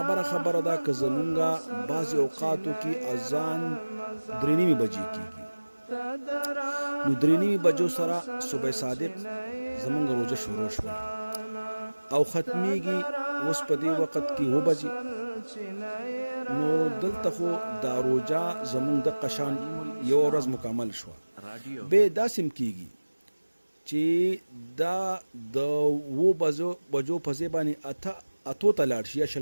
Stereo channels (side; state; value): both; inverted; correlation -1.00